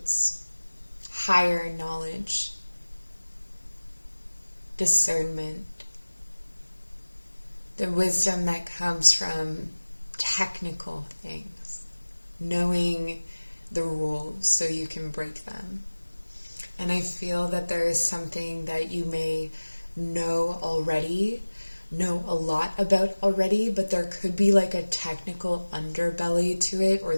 higher knowledge, discernment, the wisdom that comes from technical things, knowing the rules so you can break them. And I feel that there is something that you may know a lot about already, but there could be like a technical underbelly to it, or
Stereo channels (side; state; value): both; inverted; correlation -1.00